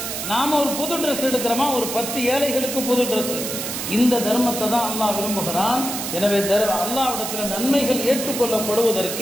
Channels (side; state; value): right; noise; hiss, 5 dB below the sound